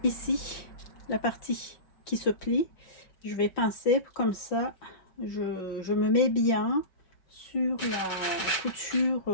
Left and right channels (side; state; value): right; late; 5.3 ms